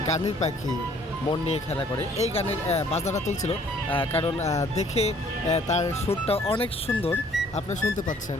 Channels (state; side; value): normal; both; correlation 0.59